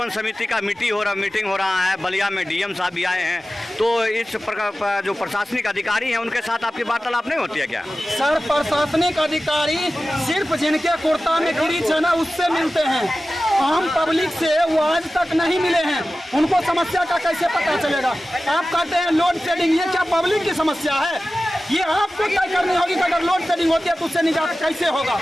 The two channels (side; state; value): both; normal; correlation 0.95